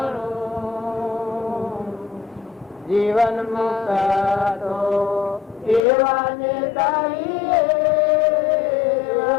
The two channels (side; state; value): right; drops out; at 5.8 s